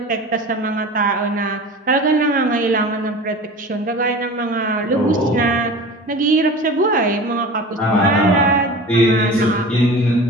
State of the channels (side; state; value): both; normal; correlation 0.36